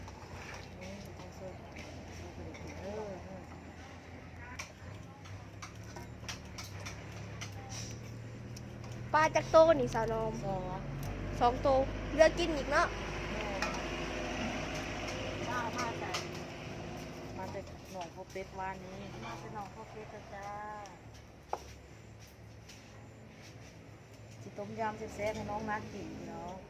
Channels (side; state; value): both; identical; correlation 1.00